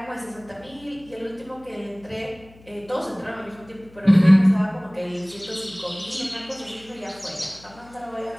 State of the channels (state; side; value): noise; left; hum, 25 dB below the sound